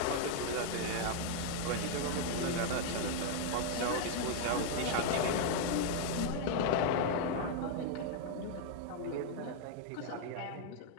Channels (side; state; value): both; different; correlation 0.00